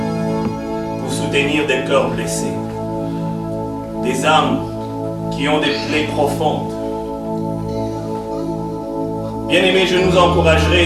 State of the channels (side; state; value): both; identical; correlation 1.00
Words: pour soutenir des cœurs blessés, des âmes qui ont des plaies profondes. Bien-aimés, je nous